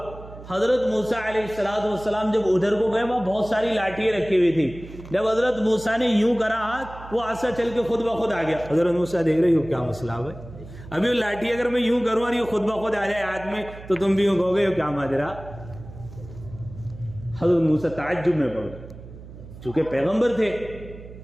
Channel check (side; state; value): right; noise; hum, 16 dB below the sound